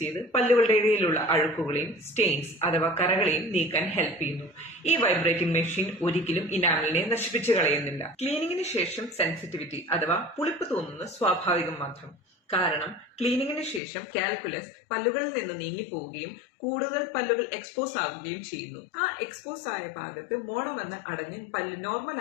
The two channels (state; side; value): drops out; right; at 13.8 s